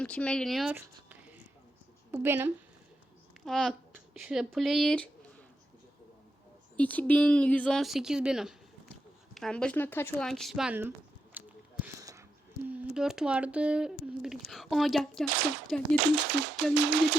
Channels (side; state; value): both; normal; correlation 0.85